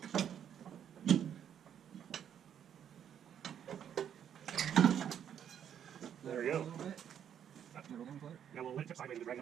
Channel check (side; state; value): left; quieter; 9.1 dB